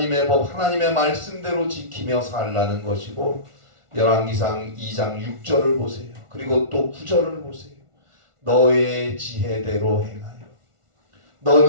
법, 하나님의 말씀대로 지키며 살라는 것이고 열왕기상 2장 6절을 보세요. 그리고 또 9절을 보세요. 너의 지혜대로 행하여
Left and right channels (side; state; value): left; late; 1.4 ms